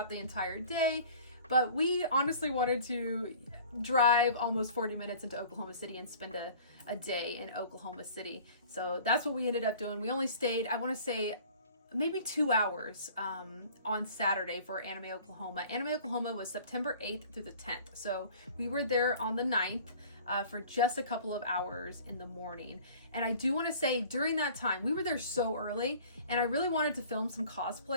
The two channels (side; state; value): both; inverted; correlation -0.47